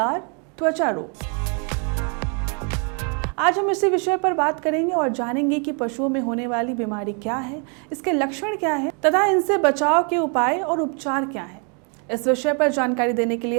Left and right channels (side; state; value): left; quieter; 37.9 dB